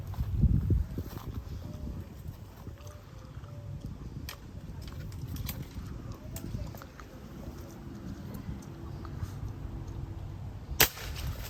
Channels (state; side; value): identical; both; correlation 1.00